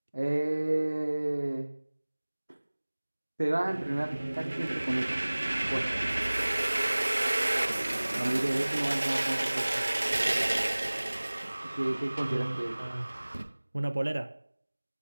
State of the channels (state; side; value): inverted; both; correlation -1.00